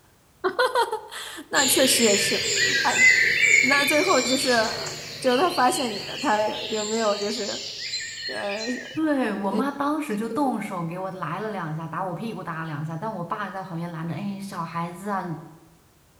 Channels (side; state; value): both; identical; correlation 1.00